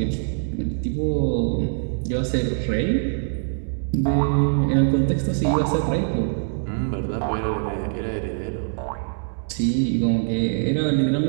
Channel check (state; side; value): silent; left; digital silence